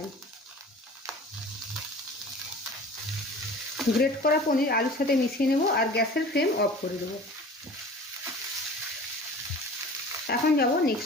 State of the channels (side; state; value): both; normal; correlation 0.42